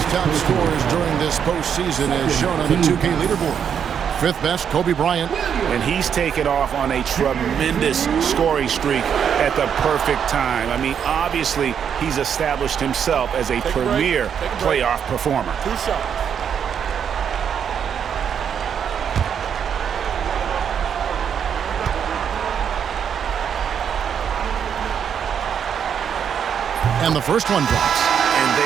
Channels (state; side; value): quieter; left; 7.9 dB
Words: top scorers during this postseason as shown on the 2K leaderboard. 5th best, Kobe Bryant. And he's taken off on a tremendous scoring streak at the perfect time. I mean, obviously, he's established himself as a premier playoff performer. 2 shots. And the first one drops. And